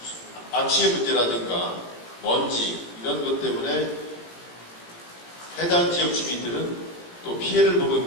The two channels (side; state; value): right; late; 17 ms